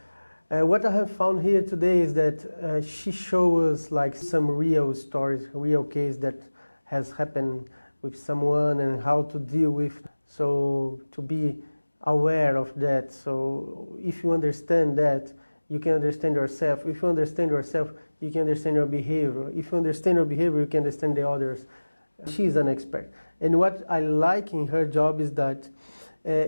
what I have found here today is that she shows us like some real stories, real case that has happened with someone and how to deal with. So to be aware of that. So if you understand that, you can understand yourself. If you understand yourself, you can understand your behavior. If you understand your behavior, you can understand the others. She's an expert. And what I like in her job is that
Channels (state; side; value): inverted; both; correlation -1.00